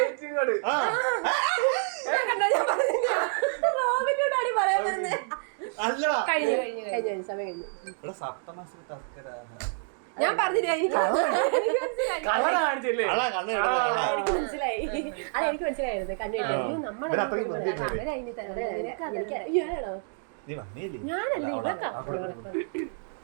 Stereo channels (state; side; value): silent; left; 59 dB below the other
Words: ഞാൻ പറഞ്ഞില്ല. എനിക്ക് മനസ്സിലായി. അതെനിക്ക് മനസ്സിലായിരുന്നു. ഞാനല്ലേ ഇവക്കാ